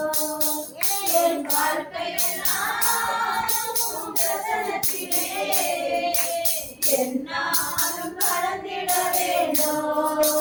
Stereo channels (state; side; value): identical; both; correlation 1.00